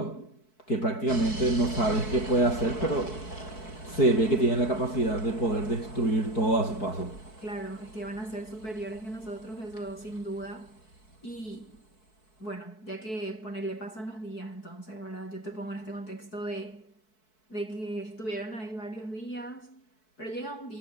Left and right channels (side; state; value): right; late; 4.6 ms